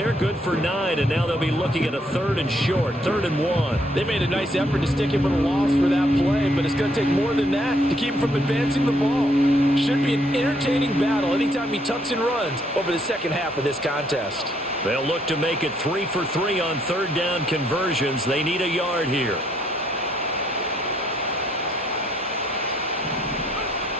good for 9, and now they'll be looking at a 3rd and short, 3rd and 1. They made a nice effort to stick him with a loss for that play, but it's going to take more than that to keep him from advancing the ball. Should be an entertaining battle anytime he tucks and runs over the second half of this contest. They'll look to make it 3 for 3 on 3rd down conversions. They need a yard here.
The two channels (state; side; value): normal; both; correlation 0.70